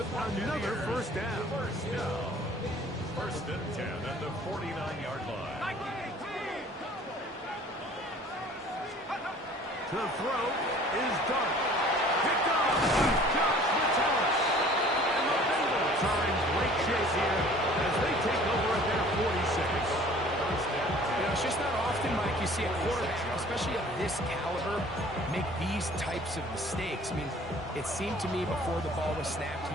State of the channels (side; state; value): both; normal; correlation 0.50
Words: another first down. First and 10 at the 49-yard line. The throw is done. Picked off by Josh Metellus. And the Bengals are in great shape here as they take over at their 46. You know, it's just not often, Mike, you see a quarterback, especially of this caliber, make these types of mistakes. I mean, it seemed to me before the ball was snapped,